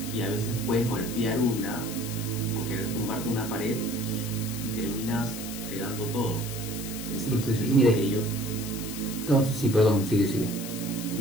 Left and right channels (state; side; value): noise; left; hiss, 9 dB below the sound